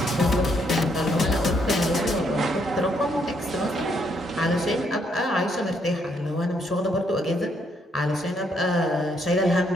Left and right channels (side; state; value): both; normal; correlation 0.73